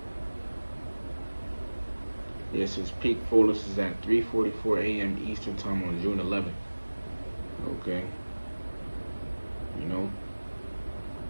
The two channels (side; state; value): both; inverted; correlation -1.00